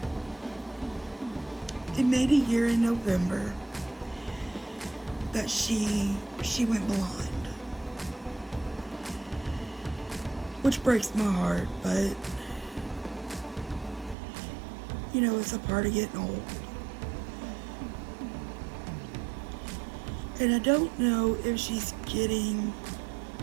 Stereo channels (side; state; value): left; drops out; at 14.2 s